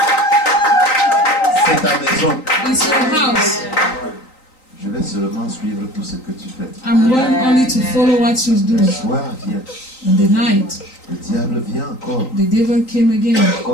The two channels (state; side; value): late; right; 3.9 ms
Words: C'est ta maison. It's your house. Je vais seulement suivre tout ce que tu fais. I'm going only to follow what you do. Le soir vient. In the night, Le diable vient encore, the devil came again.